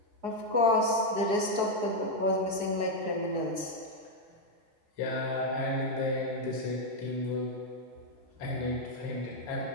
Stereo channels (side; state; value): left; late; 4.7 ms